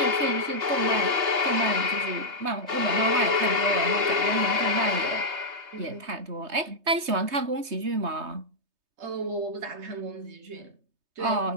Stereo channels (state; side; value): late; left; 3.2 ms